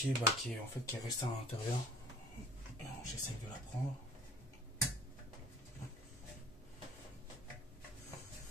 qui est restée à l'intérieur. J'essaie de la prendre.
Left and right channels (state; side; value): normal; both; correlation 0.47